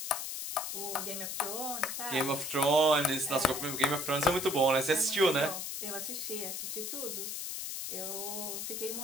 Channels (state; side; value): noise; left; hiss, 4 dB below the sound